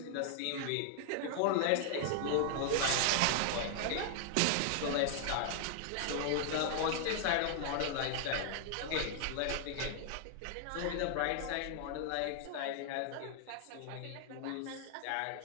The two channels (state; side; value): different; both; correlation 0.00